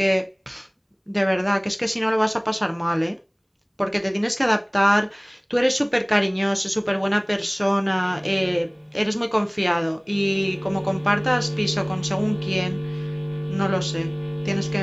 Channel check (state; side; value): identical; both; correlation 1.00